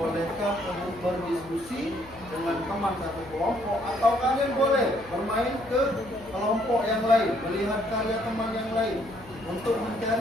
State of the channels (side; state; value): left; noise; hum, 21 dB below the sound